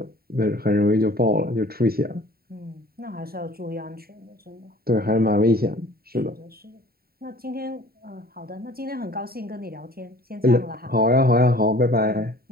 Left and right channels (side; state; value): left; late; 0.44 ms